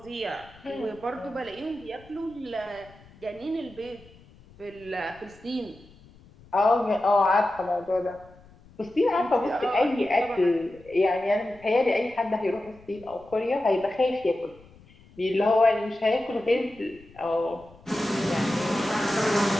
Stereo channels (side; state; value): left; noise; rumble, 25 dB below the sound